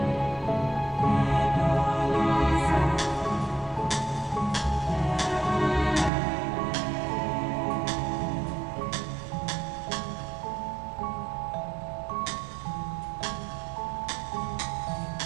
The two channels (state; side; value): drops out; left; at 6.1 s